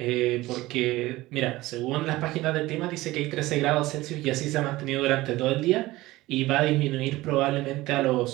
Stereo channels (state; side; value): quieter; left; 18.5 dB